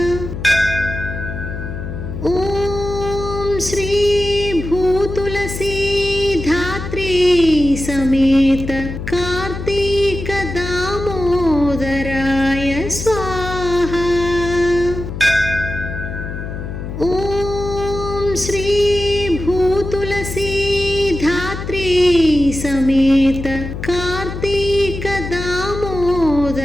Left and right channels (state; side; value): noise; left; hum, 7 dB below the sound